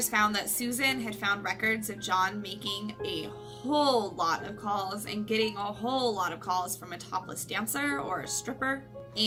found that Susan had found records of John making a whole lot of calls and getting a whole lot of calls from a topless dancer or a stripper.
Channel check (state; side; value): identical; both; correlation 1.00